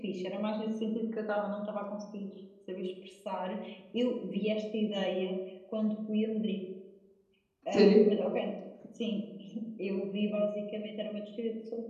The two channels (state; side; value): identical; both; correlation 1.00